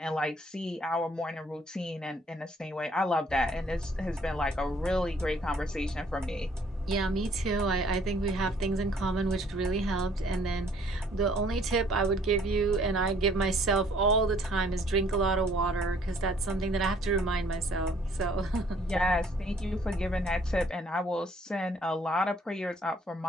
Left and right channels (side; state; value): both; normal; correlation 0.60